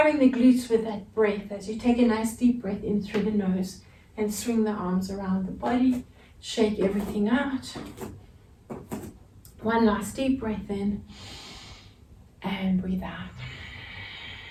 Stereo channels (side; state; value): both; identical; correlation 1.00